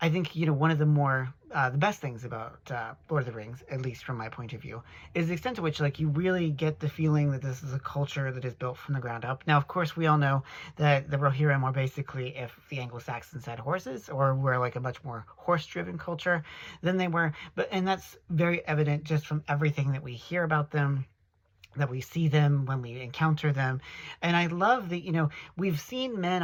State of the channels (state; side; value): identical; both; correlation 1.00